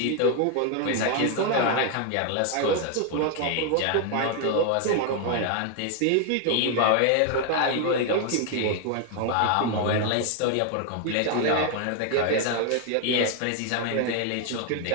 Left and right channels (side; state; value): both; different; correlation 0.01